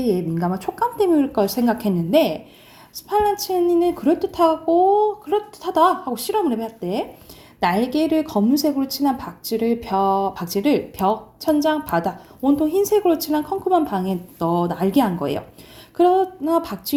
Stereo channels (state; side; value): identical; both; correlation 1.00